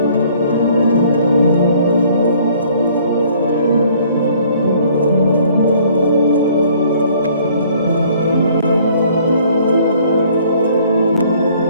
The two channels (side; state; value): both; inverted; correlation -0.59